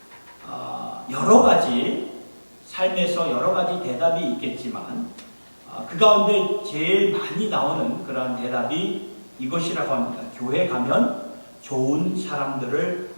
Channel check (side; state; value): both; inverted; correlation -1.00